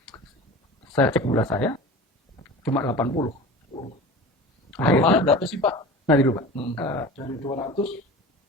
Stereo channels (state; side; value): normal; both; correlation 0.36